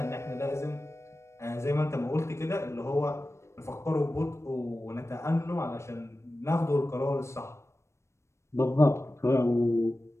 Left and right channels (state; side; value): late; right; 0.13 ms